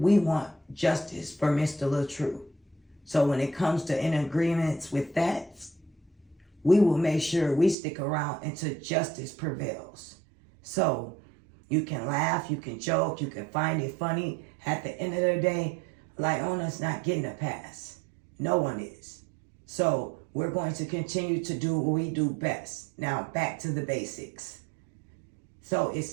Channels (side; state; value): left; drops out; at 7.8 s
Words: want justice for Mr. LaTruth. So when it comes to in agreements with that, we will make sure we stick around until justice prevails. So you can laugh, you can joke, you can find it funny. At the end of the day, Lieonya's not getting a pass. No one is. So we're going to continue to do what we do best. Now back to the basics. So it